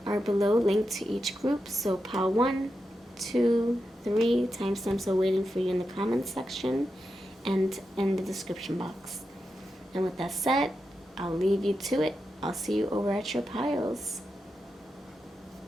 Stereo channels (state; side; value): normal; both; correlation 0.88